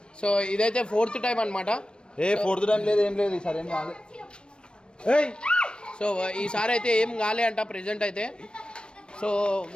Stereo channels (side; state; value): right; late; 0.054 ms